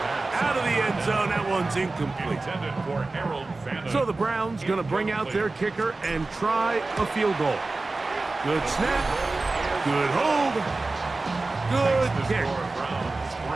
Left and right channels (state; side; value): quieter; left; 3.4 dB